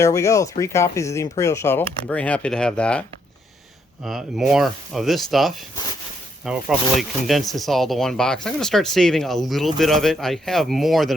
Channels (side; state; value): both; normal; correlation 0.74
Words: we go. 3 copies of the Imperial Shuttle. I'm very happy to have that. More of this stuff. I will probably condense this all to one box. I'm going to start saving a little bit of it. I have more